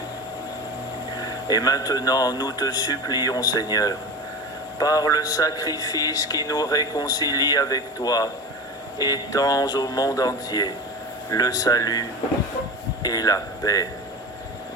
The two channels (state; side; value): normal; both; correlation 0.28